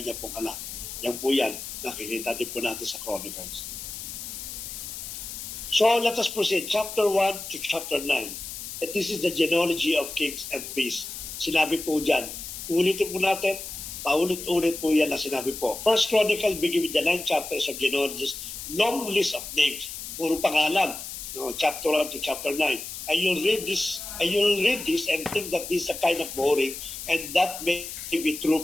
pong anak. Yan po yan, nakikita din po natin sa Chronicles. So, let us proceed. Chapter 1 to chapter 9. And this is the genealogy of kings and priests. Sinabi po dyan. Ulitin po natin. Paulit-ulit po yan na sinabi po. First Chronicle begin with the 9 chapters of genealogies. Long list of names. Puro pangalan. Chapter 1 to chapter 9. And you'll read this and think that this is a kind of boring and that may be true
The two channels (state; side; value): noise; left; hiss, 9 dB below the sound